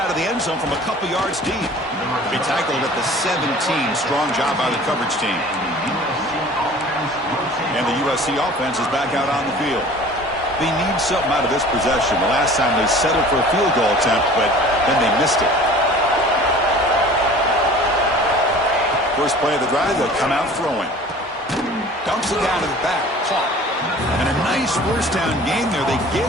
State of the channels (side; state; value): both; normal; correlation 0.45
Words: of the end zone from a couple yards deep. He tackled at the 17. Strong job by the coverage team. And the USC offense is back out on the field. They need something out of this possession. The last time they settled for a field goal attempt, but then they missed it. First play of the drive, they'll come out throwing. Dumps it down to the back. Caught. And a nice first down game there. They